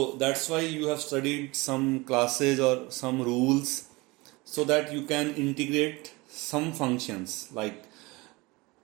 that's why you have studied some classes or some rules so that you can integrate some functions like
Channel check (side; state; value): left; quieter; 23.7 dB